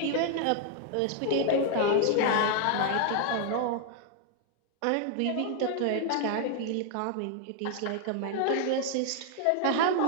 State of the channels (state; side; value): different; both; correlation 0.00